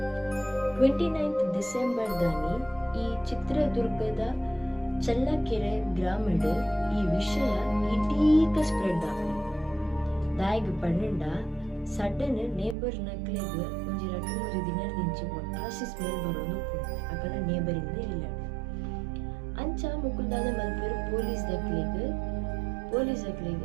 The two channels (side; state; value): left; drops out; at 12.8 s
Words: 29 ಡಿಸೆಂಬರ್ ದಾನಿ ಈ ಚಿತ್ರದುರ್ಗದ ಚಳ್ಳಕೆರೆ ಗ್ರಾಮಡ್ ಈ ವಿಷಯ ಇಡೀಕ ಸ್ಪ್ರೆಡ್ ಆಗ ದಾಯಿಗ್ ಪಂಡ ಸಡನ್ ನೇಬರ್ ನಕ್ಲೆಗ್ ಒಂಜಿ 2-3 ದಿನ ದಿಂಚಿ ಒಟ್ಟಾಸಿ ಸ್ಮೆಲ್ ಬರೋದು ಅಕಲ ನೇಬರಿಂದ ಇಲ್ಲ ಅಂಚ ಮುಕ್ಕುಲ್ದಾದ ಮಲ್ಪೇರು ಪೊಲೀಸ್